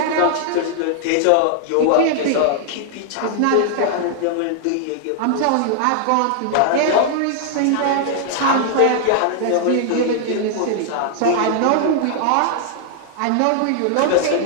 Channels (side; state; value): both; different; correlation -0.01